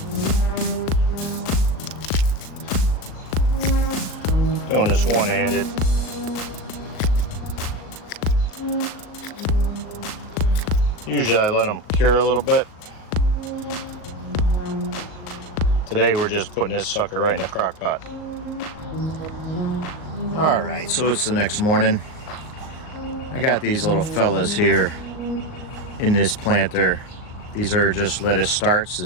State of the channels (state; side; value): late; right; 38 ms